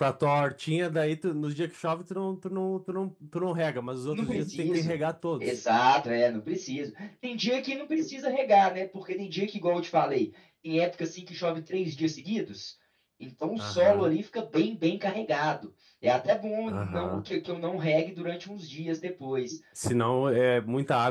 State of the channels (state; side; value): identical; both; correlation 1.00